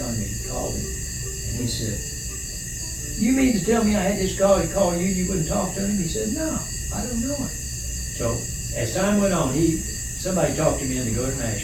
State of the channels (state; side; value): noise; left; hiss, 17 dB below the sound